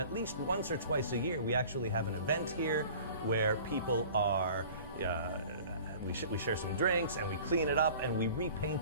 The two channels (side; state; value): both; inverted; correlation -0.45